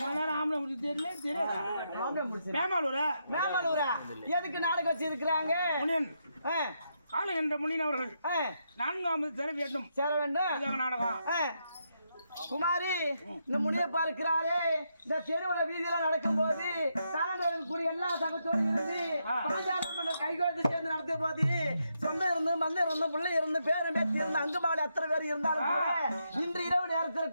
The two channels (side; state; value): both; inverted; correlation -0.80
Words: மேமாலூரா எதுக்கு நாடகம் வச்சு இருக்கிறாங்க காலம் என்ற முனியன் அவர்கள் 4ஆவது சேர வேண்டும் நாடகம் குமாரி இந்த முனியப்பா இருக்கிறாரே இந்த தெருவுல வீதியில நடக்கும் போது கூடிய எல்லா சகத்தோடு இருந்து பாஞ்சாலம் கைகோத்து சேர்ந்து நடத்தும் போது சொந்தம் இருந்து மந்தம் இருந்து பிள்ளை இருந்து பேரும் பேத்தி இருந்து அங்குபாடு எத்தனை பேர் இருந்தாலும் கூட இன்று இரவு நேரத்துல